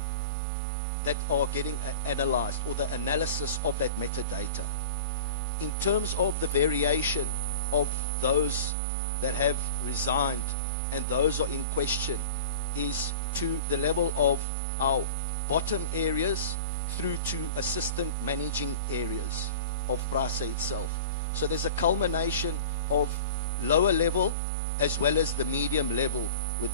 that are getting analyzed, or the analysis of that metadata. In terms of the variation of those that have resigned and those are in question, is to the level of our bottom areas through to assistant managing areas of PRASA itself. So there's a culmination of lower level as well as the medium level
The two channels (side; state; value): both; inverted; correlation -0.36